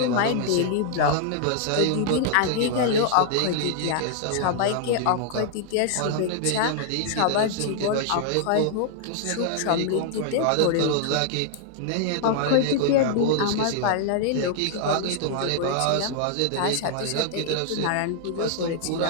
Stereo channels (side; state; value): both; different; correlation -0.01